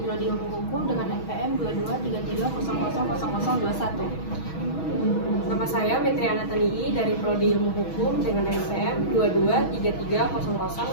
Prodi Ilmu Hukum dengan NPM 2233000021. Nama saya Metriana Tanii dari Prodi Ilmu Hukum dengan NPM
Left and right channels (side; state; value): right; late; 6.2 ms